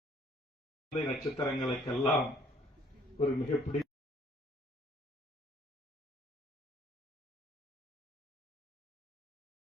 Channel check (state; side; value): normal; both; correlation 0.60